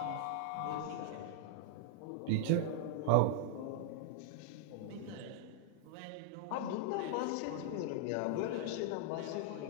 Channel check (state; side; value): different; both; correlation -0.01